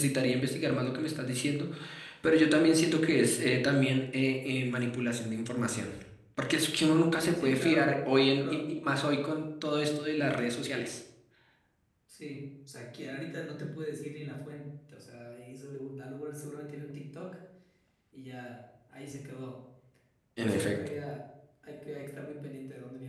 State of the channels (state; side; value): identical; both; correlation 1.00